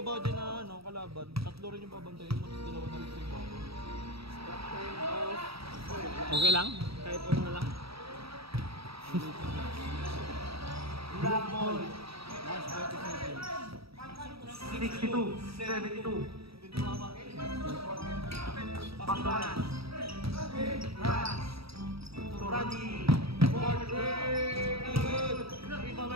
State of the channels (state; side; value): late; left; 0.76 ms